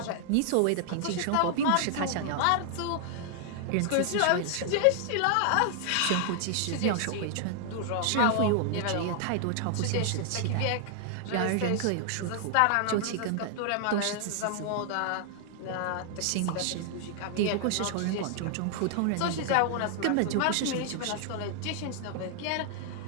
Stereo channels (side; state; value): both; different; correlation 0.00